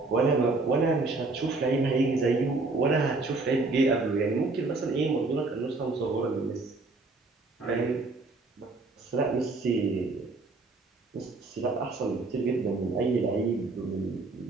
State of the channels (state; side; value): quieter; left; 3.5 dB